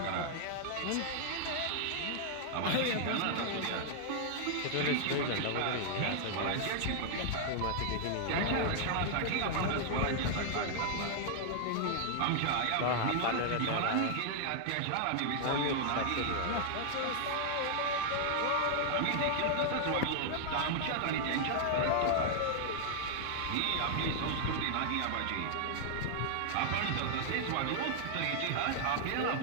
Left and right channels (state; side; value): different; both; correlation -0.01